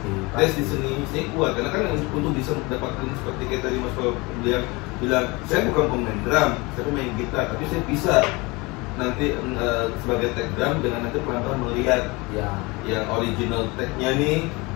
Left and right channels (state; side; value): quieter; right; 25.1 dB